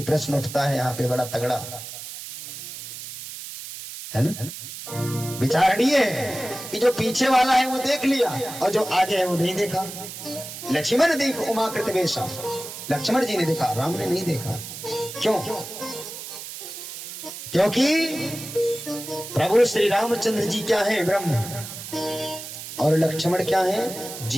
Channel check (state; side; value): noise; right; hiss, 10 dB below the sound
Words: प्रश्न उठता है यहाँ पे बड़ा तगड़ा, है ना? विचारणीय है कि जो पीछे वाला है वो देख लिया और जो आगे है वो नहीं देखा। लक्ष्मण देख उमाकृत वेशा, लक्ष्मण जी ने देखा, राम ने नहीं देखा। क्यों? क्योंकि प्रभु श्री रामचंद्र जी क्या है? ब्रह्म, और लक्ष्मण क्या है?